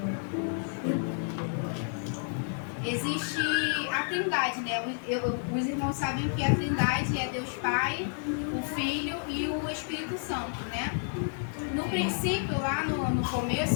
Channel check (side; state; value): right; silent; 58 dB below the other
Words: existe a Trindade, né? Os irmãos sabem que a Trindade é Deus Pai, o Filho e o Espírito Santo, né? No princípio, lá no